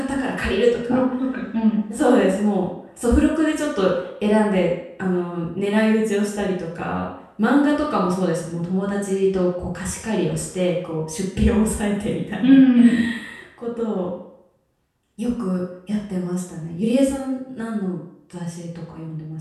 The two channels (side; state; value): both; identical; correlation 1.00